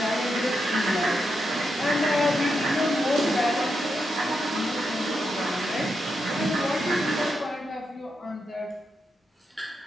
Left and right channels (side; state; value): both; normal; correlation 0.85